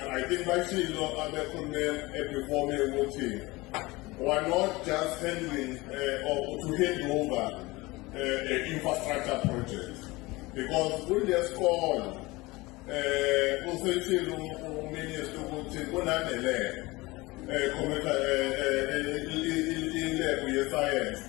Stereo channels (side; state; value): right; quieter; 22.0 dB